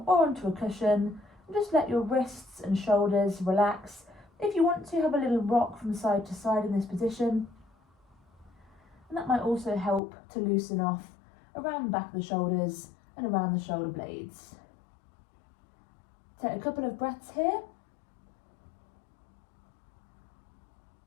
or onto a cushion and just let your wrists and shoulders relax. If you want to, have a little rock from side to side in this position. And that might also help to loosen off around the back of the shoulders and around the shoulder blades. Take a couple of breaths here.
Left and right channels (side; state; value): right; drops out; at 10.0 s